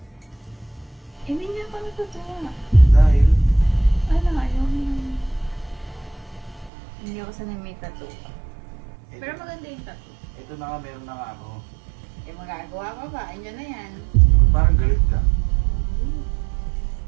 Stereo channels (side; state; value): left; drops out; at 6.7 s